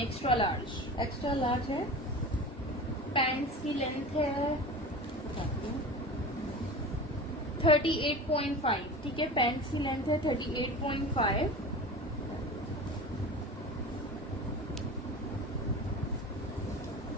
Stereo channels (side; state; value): both; normal; correlation 0.33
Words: large. Extra large है। पैंट्स की लेंथ है 38.5, ठीक है। पैंट्स की लेंथ है 38.5।